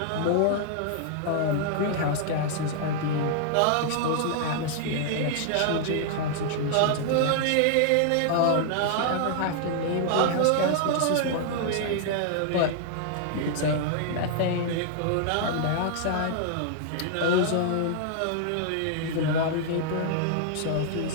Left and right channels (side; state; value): both; different; correlation -0.01